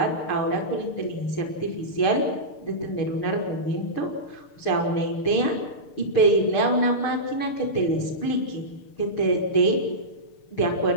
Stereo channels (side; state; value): right; late; 6.6 ms